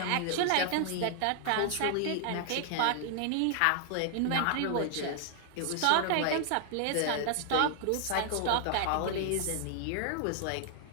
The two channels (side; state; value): both; different; correlation 0.00